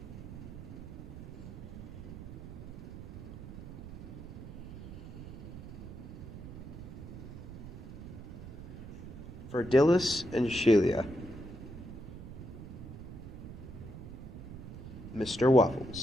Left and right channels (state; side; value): noise; right; rumble, 11 dB below the sound